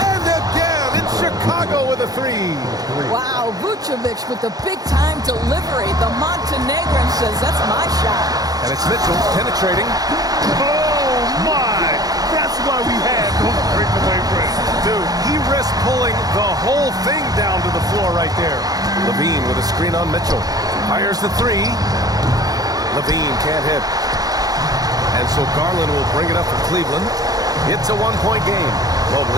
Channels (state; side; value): late; left; 0.18 ms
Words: And again, it's Chicago with a 3. Wow, Vucevic with the big-time delivery. The Montenegrin says, that's my shot. And it's Mitchell penetrating. Oh, my! That's why we had those breakaway breaks. Dude, he risked pulling the whole thing down to the floor right there. Levine with a screen on Mitchell. Fires the 3. Levine can't hit. And so Garland will bring it up for Cleveland. It's a 1-point game.